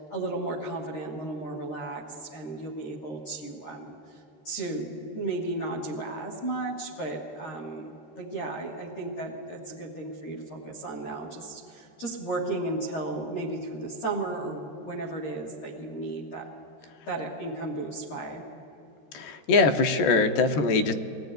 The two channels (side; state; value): right; late; 13 ms